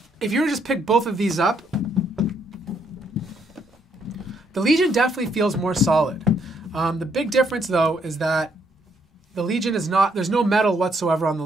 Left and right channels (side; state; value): both; normal; correlation 0.72